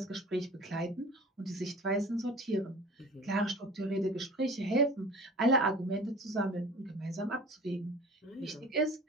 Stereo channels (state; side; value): normal; both; correlation 0.42